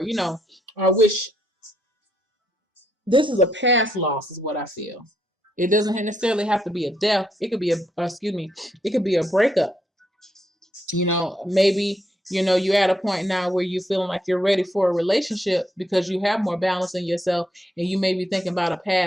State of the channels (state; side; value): normal; both; correlation 0.76